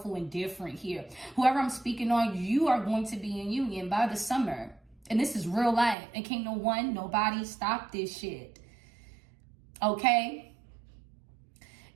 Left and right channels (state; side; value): drops out; left; at 6.0 s